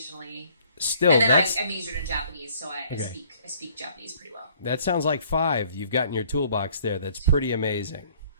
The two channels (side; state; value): both; inverted; correlation -0.59